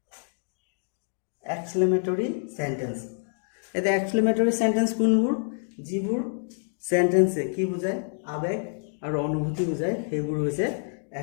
এক্সক্লেমেটৰী সেন্টেন্স এটা এক্সক্লেমেটৰী সেন্টেন্স কোনবোৰ যিবোৰ সেন্টেন্সে কি বুজায় আবেগ আৰু অনুভূতি বুজায় সেইবোৰ হৈছে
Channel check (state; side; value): silent; right; digital silence